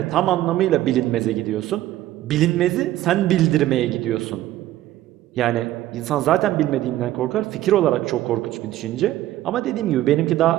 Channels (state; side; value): quieter; left; 14.5 dB